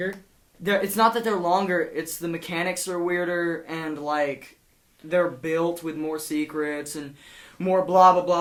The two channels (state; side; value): identical; both; correlation 1.00